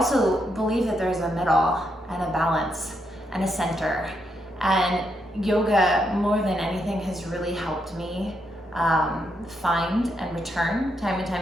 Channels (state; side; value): normal; both; correlation 0.79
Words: believe that there's a middle and a balance and a center. And yoga, more than anything, has really helped me find and return time and